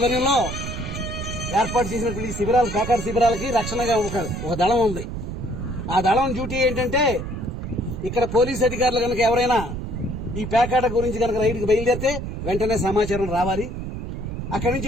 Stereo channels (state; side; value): noise; right; rumble, 6 dB below the sound